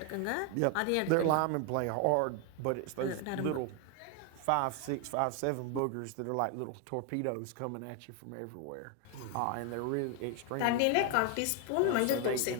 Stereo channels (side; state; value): both; different; correlation 0.01